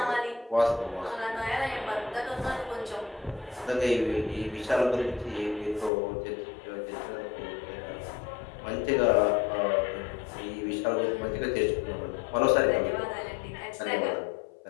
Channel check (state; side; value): drops out; right; at 5.9 s